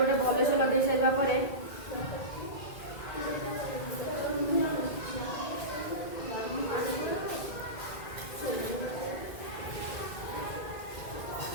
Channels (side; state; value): right; late; 2.1 ms